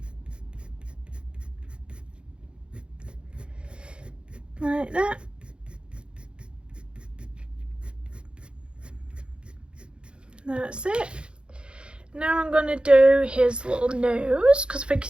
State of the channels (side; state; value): left; late; 0.055 ms